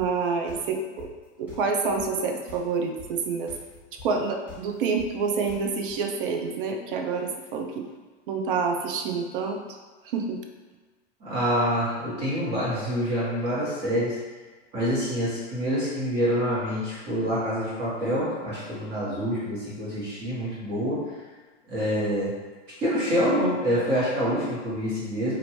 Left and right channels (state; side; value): normal; both; correlation 0.25